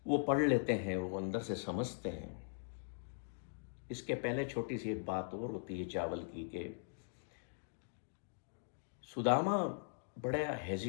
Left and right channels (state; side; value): silent; right; digital silence